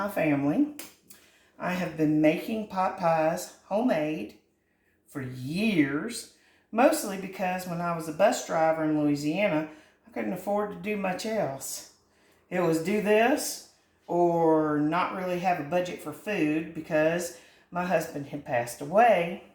family. I have been making pot pies homemade for years, mostly because when I was a bus driver in Louisiana, I couldn't afford to do much else. It was do this or not really have a budget for food because my husband had passed away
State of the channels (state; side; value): identical; both; correlation 1.00